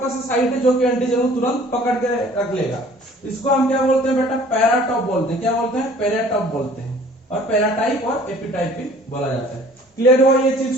साइट है जो कि एंटीजन को तुरंत पकड़ के रख लेगा। इसको हम क्या बोलते हैं बेटा? पैराटॉप बोलते हैं। क्या बोलते हैं? पैराटॉप बोलते हैं। और पैराटाइप और एपिटाइप भी बोला जाता है। क्लियर हुआ ये चीज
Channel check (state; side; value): normal; both; correlation 0.52